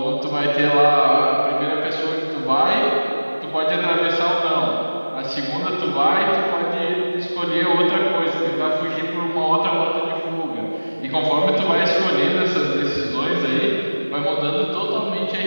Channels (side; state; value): both; inverted; correlation -1.00